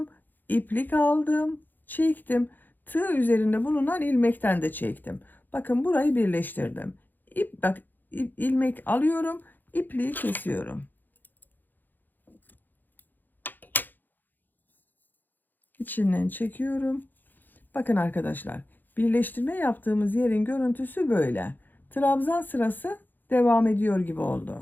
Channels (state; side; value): late; right; 0.088 ms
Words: İplik aldım, çektim. Tığ üzerinde bulunan ilmekten de çektim. Bakın burayı birleştirdim. Bak ilmek alıyorum, ipliği kesiyorum. İçinden çekiyorum. Bakın arkadaşlar, birleştirme yaptığımız yerin görüntüsü böyle. Trabzan sırası devam ediyor gibi